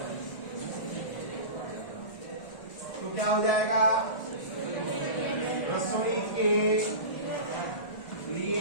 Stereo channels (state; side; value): late; right; 1.4 ms